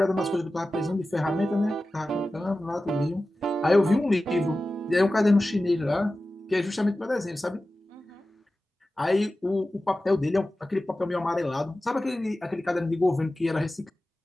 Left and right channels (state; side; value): normal; both; correlation 0.95